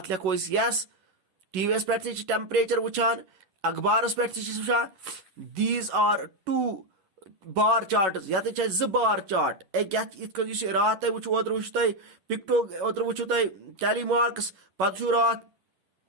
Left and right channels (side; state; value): left; late; 10 ms